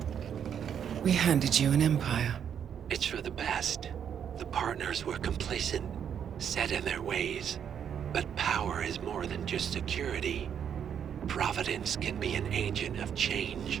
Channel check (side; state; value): left; quieter; 8.4 dB